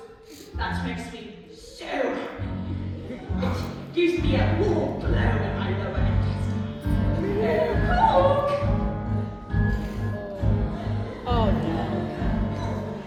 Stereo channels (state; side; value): identical; both; correlation 1.00